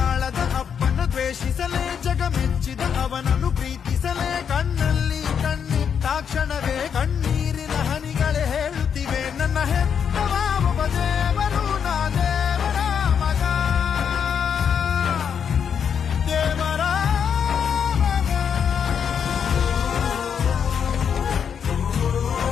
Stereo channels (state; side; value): quieter; right; 7.5 dB